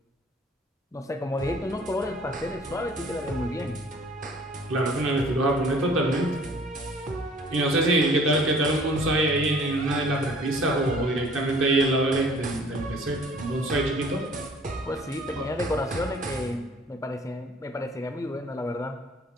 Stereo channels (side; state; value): both; normal; correlation 0.53